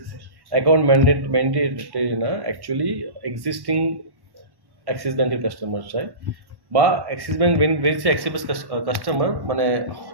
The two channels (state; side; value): late; left; 1.1 ms